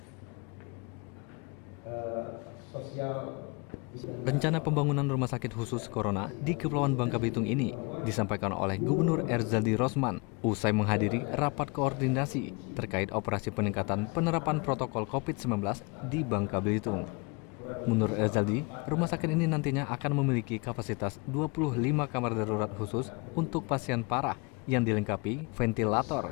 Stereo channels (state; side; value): quieter; right; 29.1 dB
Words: Rencana pembangunan rumah sakit khusus corona di Kepulauan Bangka Belitung ini disampaikan oleh Gubernur Erzaldi Rosman usai menghadiri rapat koordinasi terkait operasi peningkatan penerapan protokol COVID-19 di Bangka Belitung. Menurut Erzaldi, rumah sakit ini nantinya akan memiliki kapasitas 25 kamar darurat khusus untuk pasien parah yang dilengkapi